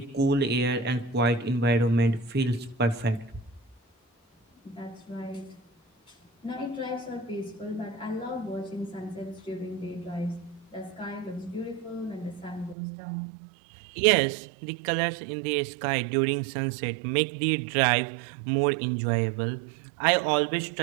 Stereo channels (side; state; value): left; drops out; at 12.8 s